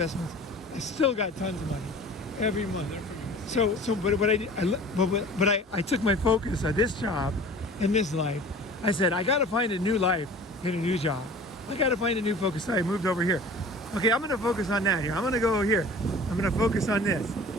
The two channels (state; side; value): normal; both; correlation 0.43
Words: I still got tons of money every month. But I took my focus on this job and this life. I said, I got to find a new life in a new job. I got to find a new focus. Sorry, I moved over here. Okay, I'm going to focus on that here. I'm going to go here. I'm going to focus on this.